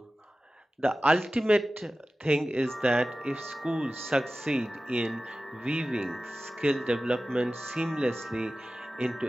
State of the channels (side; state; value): both; normal; correlation 0.95